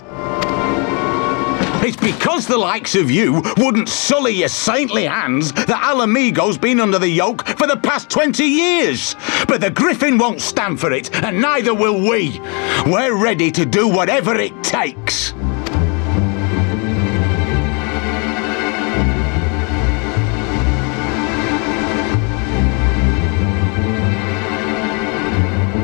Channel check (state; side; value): quieter; right; 33.9 dB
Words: It's because the likes of you wouldn't sully your saintly hands that Alamigo's been under the yoke for the past 20 years. But the Griffin won't stand for it, and neither will we. We're ready to do whatever it takes.